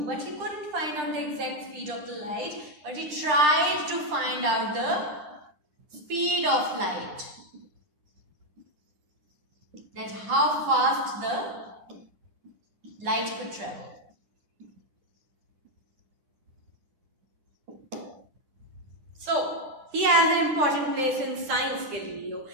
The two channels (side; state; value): left; late; 10 ms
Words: but he couldn't find out the exact speed of the light, but he tried to find out the speed of light. That how fast the light could travel. So, he has an important place in science, Galileo.